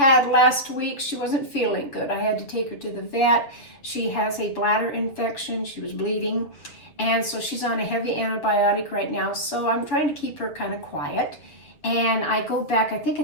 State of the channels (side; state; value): right; late; 6.8 ms